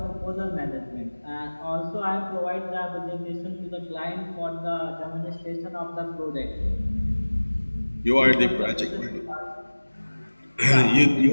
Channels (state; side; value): inverted; both; correlation -1.00